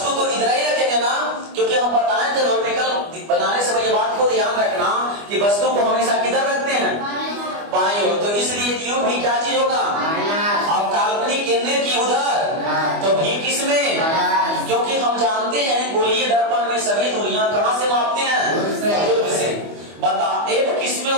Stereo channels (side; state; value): left; late; 25 ms